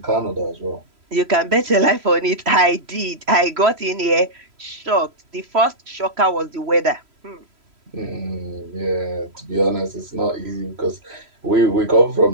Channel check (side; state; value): left; late; 3.0 ms